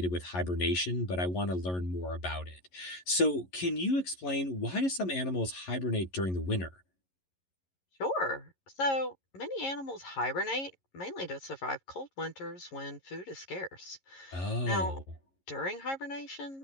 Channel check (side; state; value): right; late; 11 ms